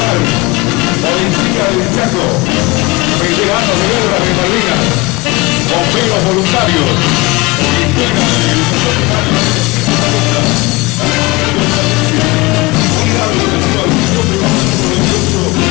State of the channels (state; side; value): quieter; right; 23.1 dB